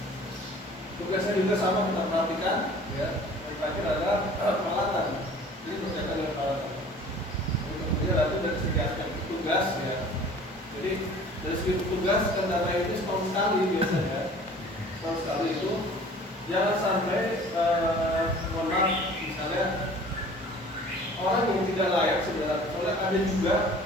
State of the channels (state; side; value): normal; both; correlation 0.47